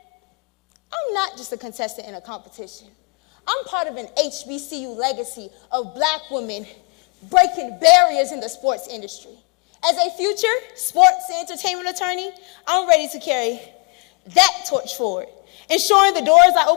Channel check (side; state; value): right; quieter; 32.8 dB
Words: I'm not just a contestant in a competition. I'm part of an HBCU legacy of Black women breaking barriers in the sports industry. As a future sports and entertainment attorney, I'm ready to carry that torch forward, ensuring the doors I